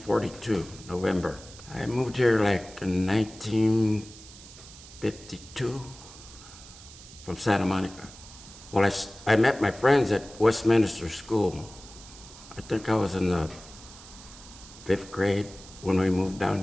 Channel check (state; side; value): noise; right; hiss, 18 dB below the sound